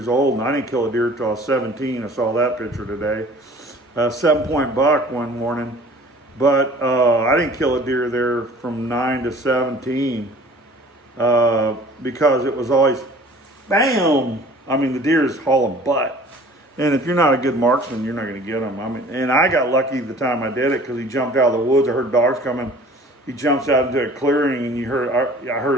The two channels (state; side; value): normal; both; correlation 0.48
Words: old, and I didn't kill a deer until I was 17. I saw that picture today. 7-point buck one morning. But I didn't kill a deer there from 9 to 17 because it was always, bam! The deer is hauling butt. And if you're not a good marksman, you're not going to get them. And I got lucky the time I did it, because he jumped out of the woods. I heard dogs coming. He jumps out into a clearing, and I